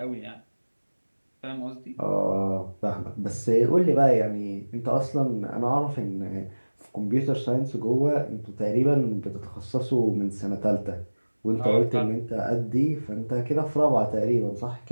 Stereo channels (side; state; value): both; inverted; correlation -1.00